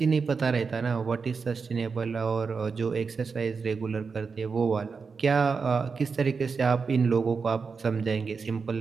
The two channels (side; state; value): left; quieter; 5.1 dB